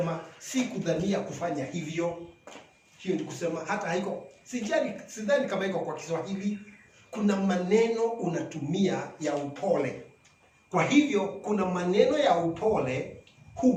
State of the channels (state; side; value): identical; both; correlation 1.00